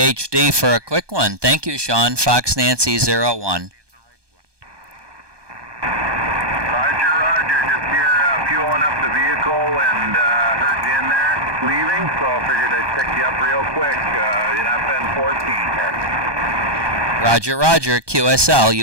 for a quick one. Thank you, Sean. Fox Nancy 01. Roger. Just here fueling up the vehicle and heard you in there leaving, so I figured I'd pick you up real quick. You're not been 14 here. Roger. QSL,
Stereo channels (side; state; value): left; late; 1.2 ms